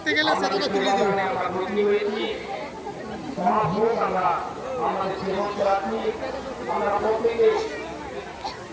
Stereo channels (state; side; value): identical; both; correlation 1.00